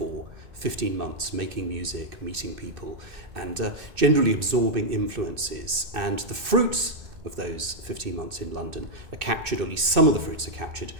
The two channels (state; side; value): late; left; 2.6 ms